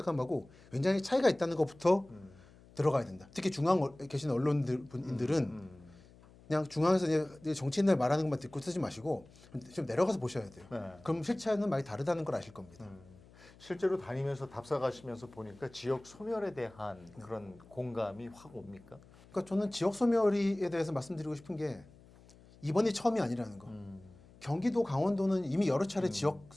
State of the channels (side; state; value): left; noise; hum, 24 dB below the sound